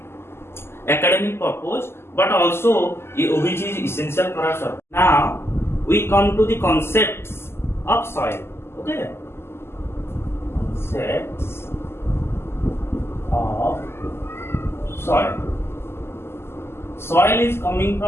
academic purpose but also which is essential for our survival. Now we come to the concepts of soil. Okay, concepts of soil. Soil is coming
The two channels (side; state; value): right; late; 0.12 ms